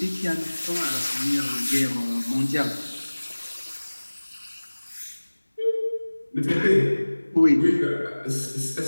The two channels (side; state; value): both; inverted; correlation -1.00